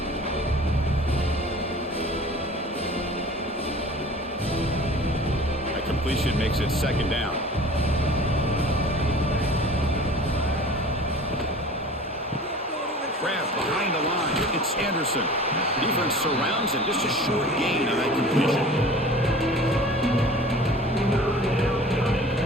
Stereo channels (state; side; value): normal; both; correlation 0.43